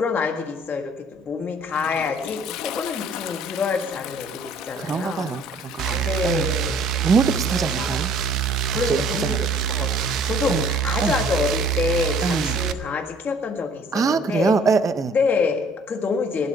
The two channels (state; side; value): normal; both; correlation 0.55